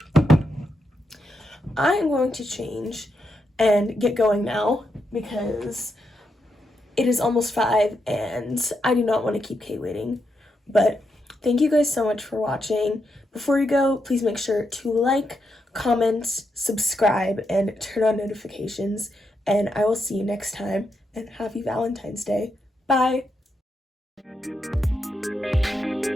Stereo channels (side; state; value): both; normal; correlation 0.83